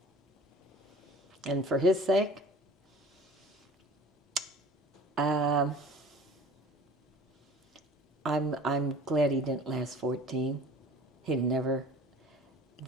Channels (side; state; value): both; normal; correlation 0.45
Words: And for his sake, I'm glad he didn't last 14. He'd never,